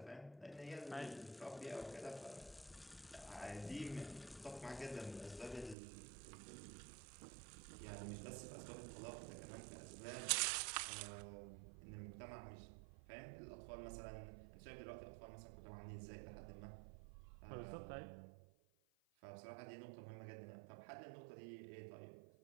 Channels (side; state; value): left; drops out; at 5.8 s